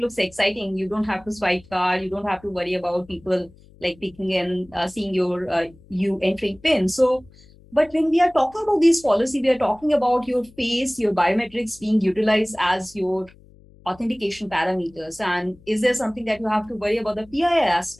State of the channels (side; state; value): left; noise; hum, 25 dB below the sound